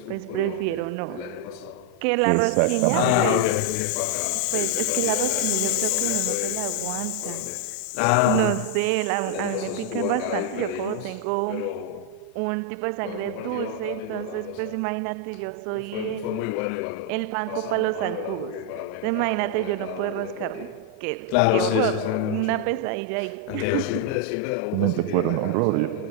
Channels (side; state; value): both; different; correlation 0.00